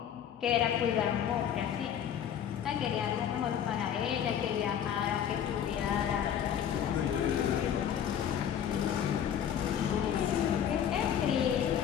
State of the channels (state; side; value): quieter; right; 9.2 dB